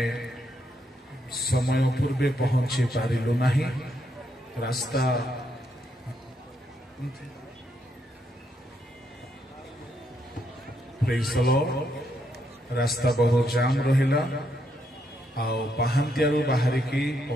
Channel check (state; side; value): normal; both; correlation 0.77